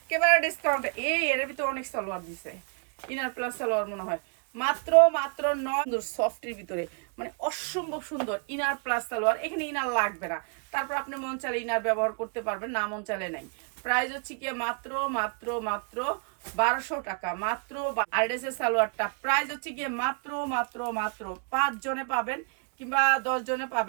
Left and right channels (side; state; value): left; quieter; 39.6 dB